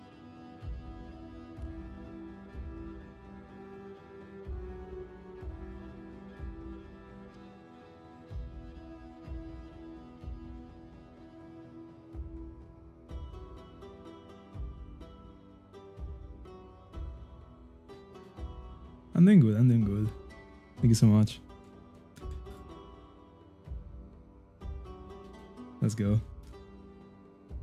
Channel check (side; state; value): both; identical; correlation 1.00